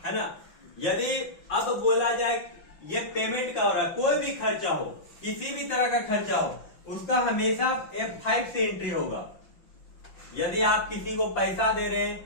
है ना। यदि अब बोला जाए ये पेमेंट का हो रहा है, कोई भी खर्चा हो, किसी भी तरह का खर्चा हो, उसका हमेशा F5 से एंट्री होगा। यदि आप किसी को पैसा दे रहे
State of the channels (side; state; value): right; late; 5.9 ms